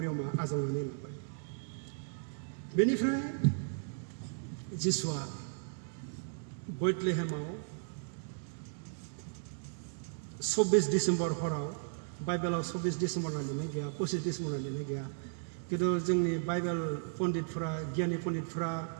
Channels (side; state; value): left; silent; digital silence